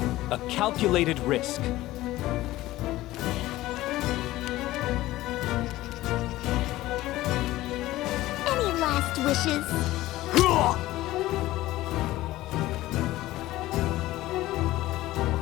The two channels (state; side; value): quieter; right; 16.7 dB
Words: A calculated risk. Any last wishes?